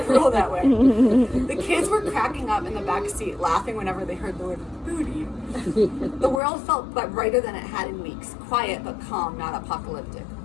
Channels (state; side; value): drops out; right; at 6.4 s